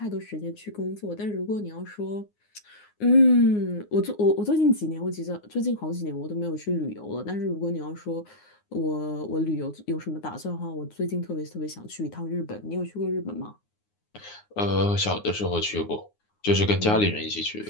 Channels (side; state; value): right; late; 9.6 ms